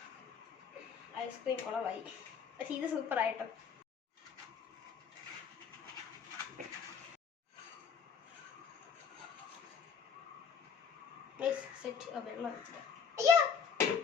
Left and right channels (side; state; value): right; quieter; 6.8 dB